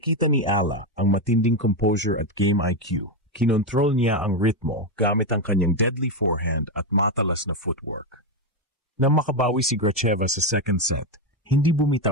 ni Ala ang matinding composure at game IQ. Kinontrol niya ang ritmo gamit ang kanyang deadly forehand at matalas na footwork. Nang makabawi si Gracheva sa second set, hindi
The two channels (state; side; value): normal; both; correlation 0.08